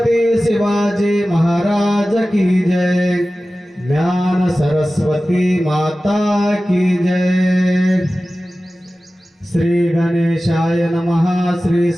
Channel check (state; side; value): normal; both; correlation 0.96